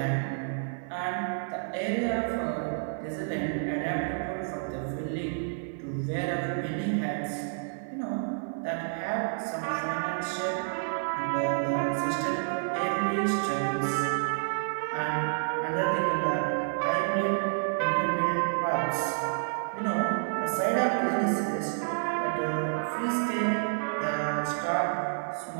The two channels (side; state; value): left; silent; 58 dB below the other